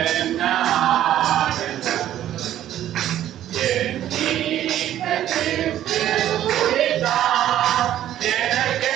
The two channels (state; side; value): quieter; left; 12.1 dB